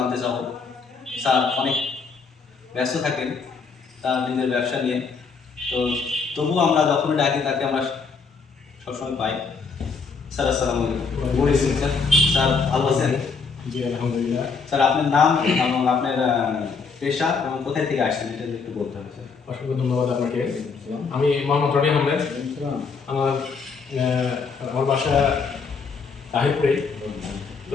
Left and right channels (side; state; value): right; quieter; 5.1 dB